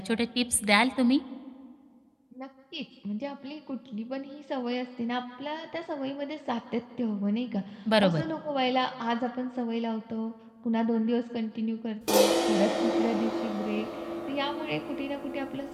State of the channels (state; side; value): identical; both; correlation 1.00